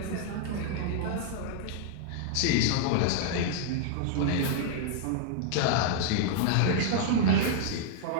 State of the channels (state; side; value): different; both; correlation -0.01